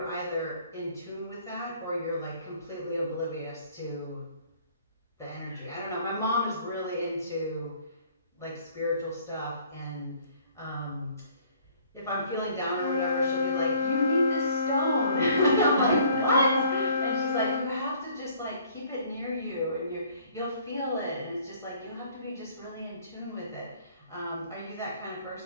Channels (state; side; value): inverted; both; correlation -0.57